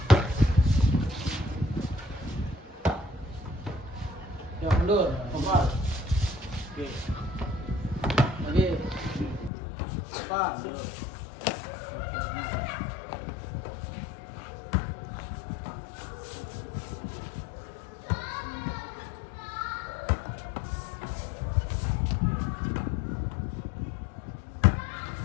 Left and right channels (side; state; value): right; drops out; at 9.5 s